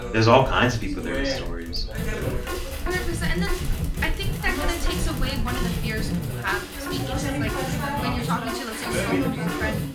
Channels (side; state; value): both; identical; correlation 1.00